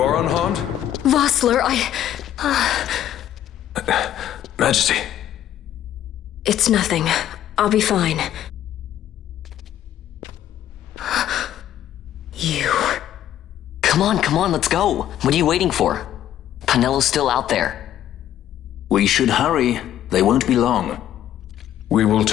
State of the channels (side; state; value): right; quieter; 11.5 dB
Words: are unharmed? Vossler, Majesty. It's nothing. I'll be fine. You. Come on, let's go. What are you waiting for? Penello's still out there. We should hurry. They won't be long. We will